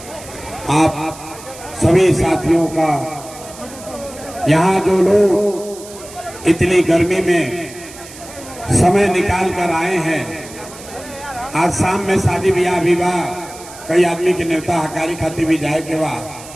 आप सभी साथियों का, यहाँ जो लोग इतनी गर्मी में समय निकाल कर आए हैं, आज शाम में शादी ब्याह विवाह कई आदमी के नेता हकारी खाती भी जाए के बाद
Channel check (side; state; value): right; noise; hiss, 17 dB below the sound